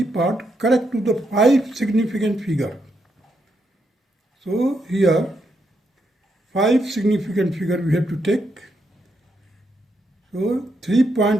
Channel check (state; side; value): normal; both; correlation 0.80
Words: part, correct to the 5 significant figure. So here 5 significant figure we have to take. So